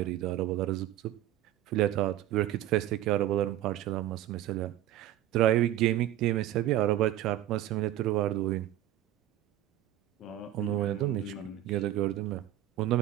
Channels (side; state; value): left; quieter; 13.1 dB